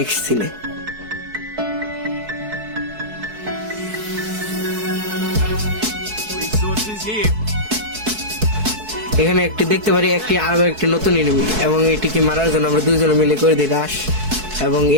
সিনে। এখানে একটি দেখতে পারি আরো একটি নতুন এনিমি, এবং এটিকে মারার জন্য আমরা দুজন মিলে করে দিই রাশ, এবং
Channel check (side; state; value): left; late; 4.6 ms